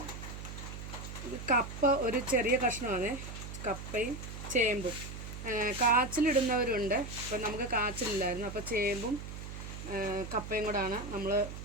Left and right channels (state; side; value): noise; right; hum, 9 dB below the sound